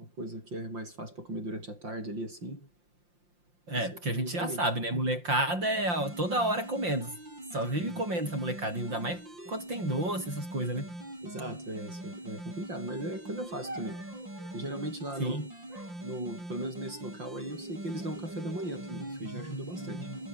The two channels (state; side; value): late; left; 5.7 ms